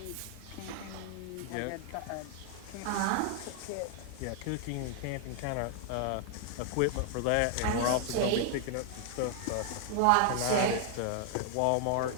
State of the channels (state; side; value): different; both; correlation 0.00